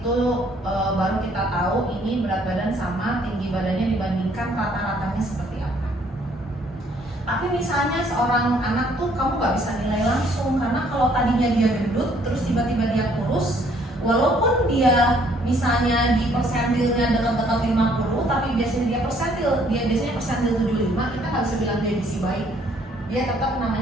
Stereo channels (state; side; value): normal; both; correlation 0.64